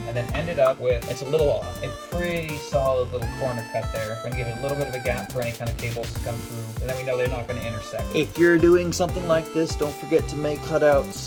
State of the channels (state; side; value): identical; both; correlation 1.00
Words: and then ended up with, it's a little off, a pretty solid little corner cut there. We're gonna give it a little bit of a gap for any kind of cables to come through, and then we know they're not gonna intersect. If you're doing something like this, don't forget to make